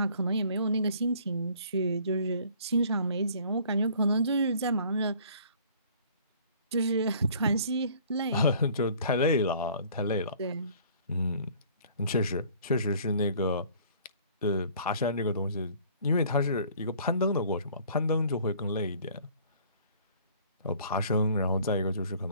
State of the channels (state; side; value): inverted; both; correlation -0.54